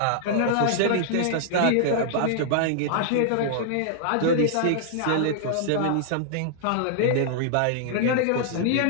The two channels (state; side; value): different; both; correlation -0.01